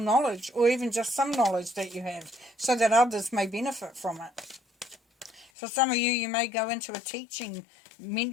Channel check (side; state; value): right; drops out; at 5.5 s